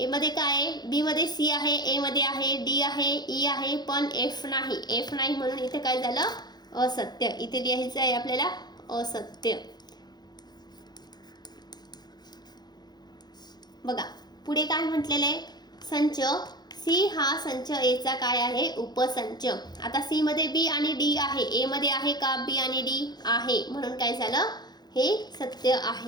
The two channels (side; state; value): right; late; 0.20 ms